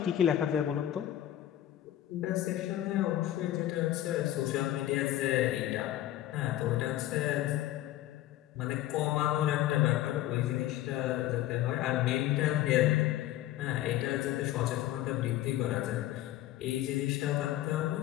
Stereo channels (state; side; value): quieter; right; 13.5 dB